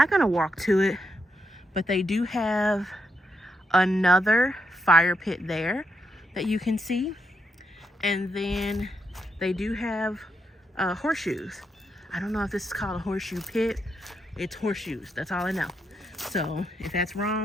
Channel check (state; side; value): normal; both; correlation 0.80